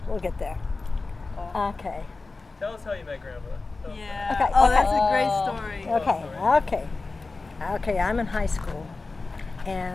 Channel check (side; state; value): right; quieter; 3.7 dB